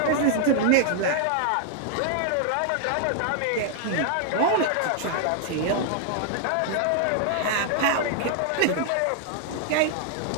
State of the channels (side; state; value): both; different; correlation 0.00